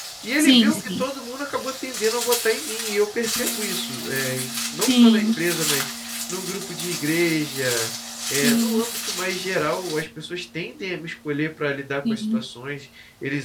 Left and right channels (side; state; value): both; identical; correlation 1.00